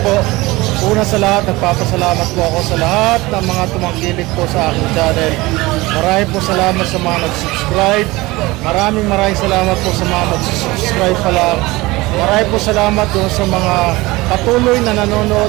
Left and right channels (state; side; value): quieter; left; 21.0 dB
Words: po, una sa lahat, nagpapasalamat po ako sa lahat ng mga tumangkilik po sa aking channel. Maraming po salamat sa mga nag-subscribe. Maraming salamat po sa mga mag-subscribe pa lang. Maraming po salamat doon sa mga patuloy na